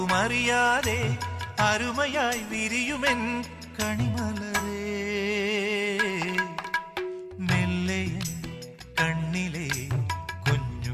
അരുമയായി വിരിയുമെൻ കണിമലരേ മെല്ലയൻ കണ്ണിലെ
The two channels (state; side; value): identical; both; correlation 1.00